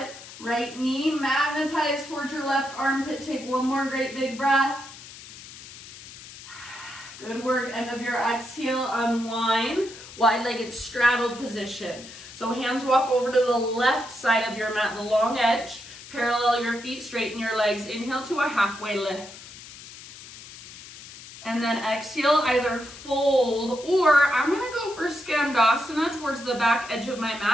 Right knee magnetize towards your left armpit. Take 1 more great big breath. Good work. End of your exhale, unwind. Wide-legged straddle position. So hands walk over to the left side of your mat, the long edge. Parallel your feet, straighten your legs. Inhale to a halfway lift. And then exhale, either fold or I'm going to go for Skandasana towards the back edge of my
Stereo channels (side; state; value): left; noise; hiss, 16 dB below the sound